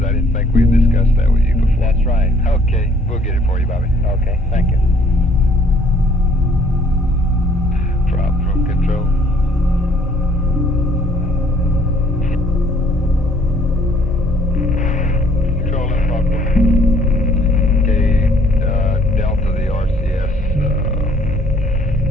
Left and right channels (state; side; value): normal; both; correlation 0.61